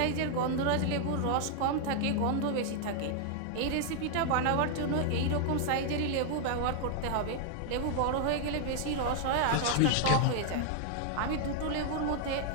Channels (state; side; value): different; both; correlation 0.00